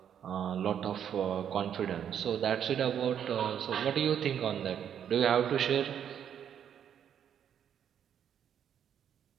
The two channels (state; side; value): quieter; left; 9.0 dB